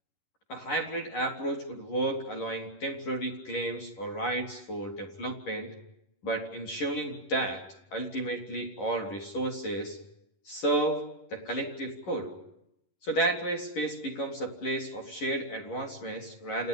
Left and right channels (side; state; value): right; late; 11 ms